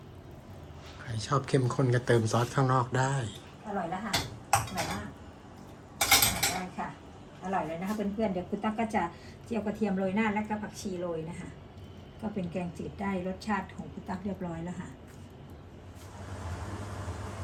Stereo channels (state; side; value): identical; both; correlation 1.00